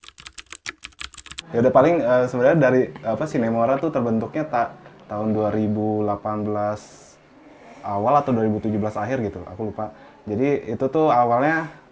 Ya udah paling sebenarnya dari Sinemora tuh terbentuknya tahun 2018 awal atau 2017 akhir gitu, aku lupa. Jadi itu tuh awalnya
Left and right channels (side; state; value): both; identical; correlation 1.00